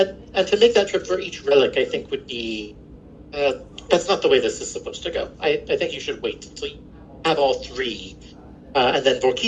to make that trip for each relic, I think would be... that's not the way this is supposed to go. I think you should wait until you have all 3. And then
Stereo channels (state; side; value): identical; both; correlation 1.00